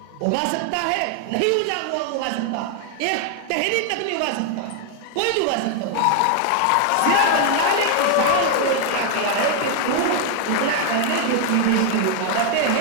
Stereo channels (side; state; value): both; different; correlation 0.00